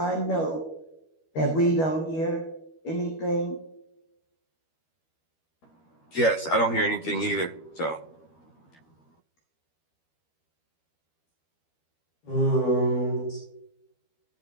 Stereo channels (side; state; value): right; late; 12 ms